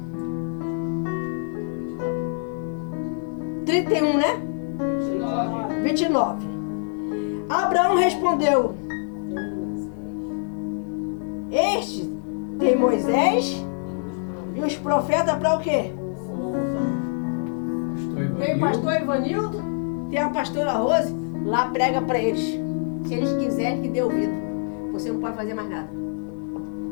31, né? 29. Abraão respondeu: Este tem Moisés e os profetas para o quê? Tem o pastor Ivanildo, tem a pastora Rose, lá prega para eles. Se eles quiserem que dê ouvido. Você não pode fazer mais nada.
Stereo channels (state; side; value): silent; right; digital silence